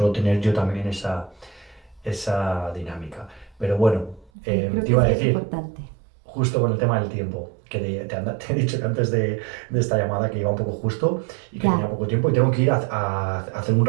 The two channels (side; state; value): left; drops out; at 4.3 s